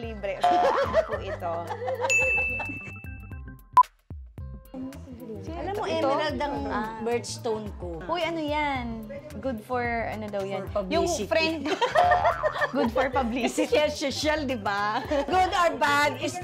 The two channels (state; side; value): identical; both; correlation 1.00